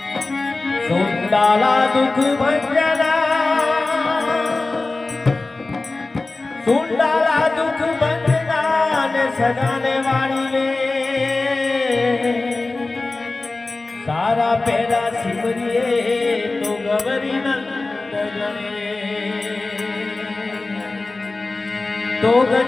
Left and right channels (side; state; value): right; quieter; 3.3 dB